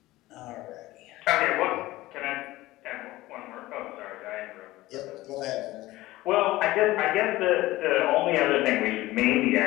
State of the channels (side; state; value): right; quieter; 17.8 dB